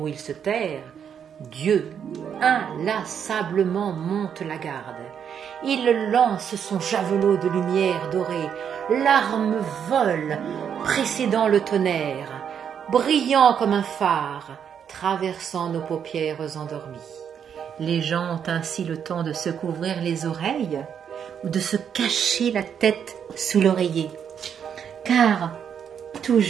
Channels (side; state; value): left; quieter; 8.0 dB